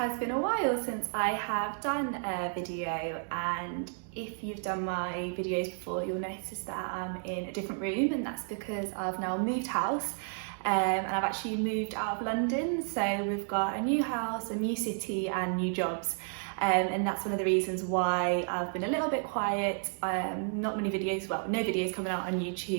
been a while since I have done a video, and if you've done my videos before, you'll notice that I'm in a different room, and that's because I've now moved house. And I've actually moved out of London, so we've got a new house, a new city and new jobs. And that's one of the reasons why I've been a little bit quiet. Not many videos, well, no videos coming out on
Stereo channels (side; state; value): left; silent; 57 dB below the other